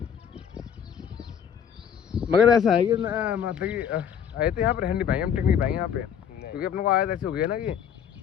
मगर ऐसा है कि मतलब कि आए तो यहाँ पर रह नहीं पाएंगे, हम टिक नहीं पाएंगे यहाँ पे, क्योंकि अपने को आयत ऐसे हो गया ना कि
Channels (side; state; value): right; quieter; 8.4 dB